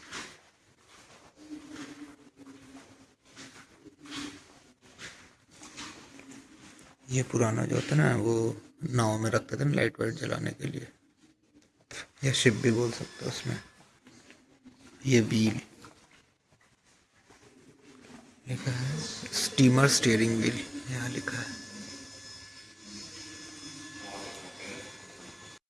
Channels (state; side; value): identical; both; correlation 1.00